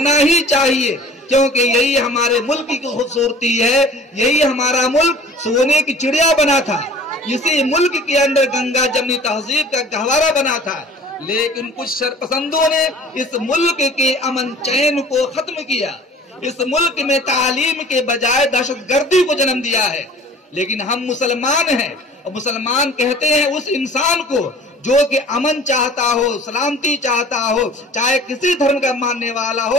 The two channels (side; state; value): both; normal; correlation 0.47